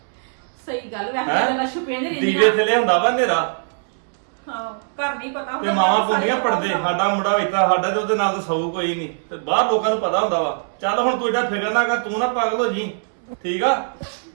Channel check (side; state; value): left; silent; 65 dB below the other